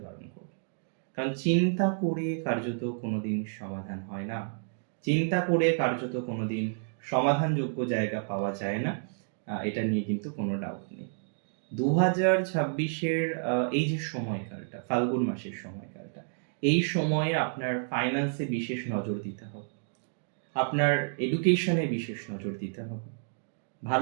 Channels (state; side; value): silent; left; digital silence